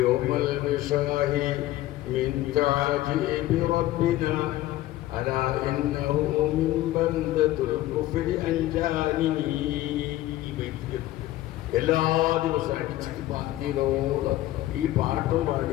من تعجيب ربنا ألا إنه من بلدة الكفر أنجاني. എല്ലാ ദിവസവും അടിച്ചിട്ട് പാട്ടിയോളം ഈ പാട്ടും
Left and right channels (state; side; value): quieter; right; 15.4 dB